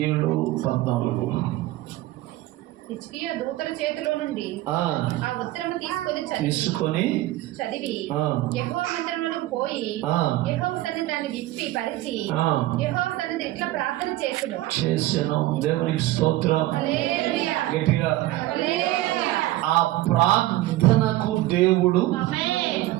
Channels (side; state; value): left; quieter; 16.5 dB